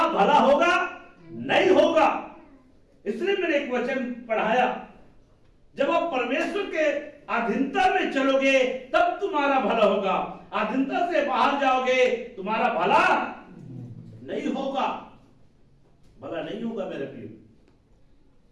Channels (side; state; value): both; identical; correlation 1.00